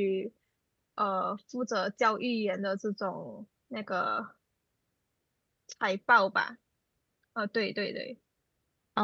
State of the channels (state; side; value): identical; both; correlation 1.00